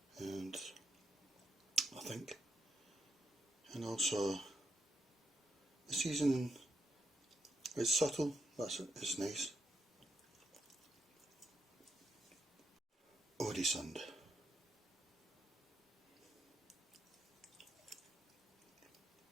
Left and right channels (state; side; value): normal; both; correlation 0.79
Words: And I think, and also the seasoning, it's subtle, it's nice. Oresund.